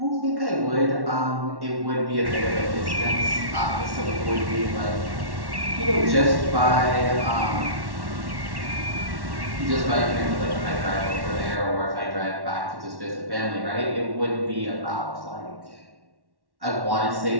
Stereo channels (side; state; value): left; late; 1.1 ms